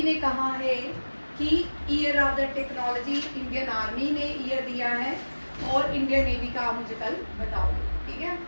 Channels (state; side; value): inverted; both; correlation -1.00